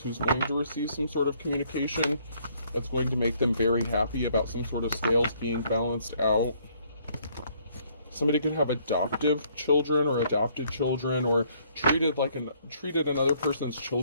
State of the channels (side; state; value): both; inverted; correlation -0.66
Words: who's going to receive some sort of communication that's going to make them very happy about some sort of scales being balanced out. Somebody could have adoptive children or adopted children, or treated another person's